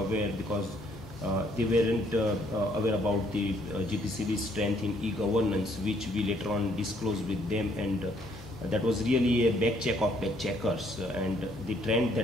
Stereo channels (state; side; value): normal; both; correlation 0.66